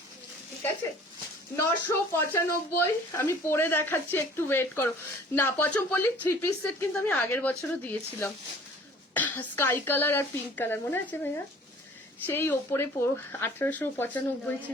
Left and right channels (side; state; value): both; normal; correlation 0.50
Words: ঠিক আছে। 995 আমি পরে দেখাচ্ছি, একটু ওয়েট করো। না পচমপল্লী 3 পিস সেট কিন্তু আমি আগের বছরও দিয়েছিলাম, স্কাই কালার আর পিঙ্ক কালার, মনে আছে ভাইয়া? সেই ওপরে 1895